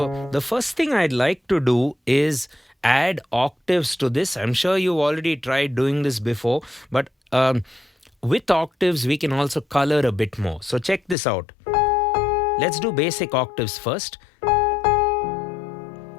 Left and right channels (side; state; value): right; drops out; at 11.2 s